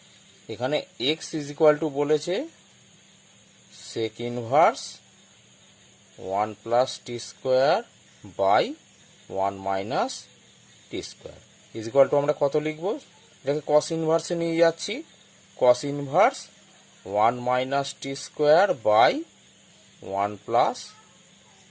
এখানে x is equal to বলেছে sec inverse 1 plus t square by 1 minus t square is equal to আমরা কত লিখব? এটাকে cos ইনভার্সে নিয়ে যাচ্ছি। Cos inverse 1 minus t square by 1 plus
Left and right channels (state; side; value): identical; both; correlation 1.00